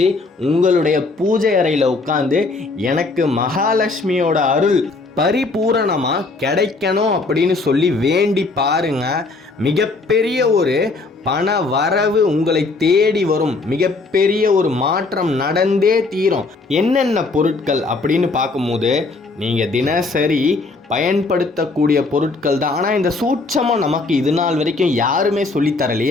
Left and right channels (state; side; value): quieter; right; 3.7 dB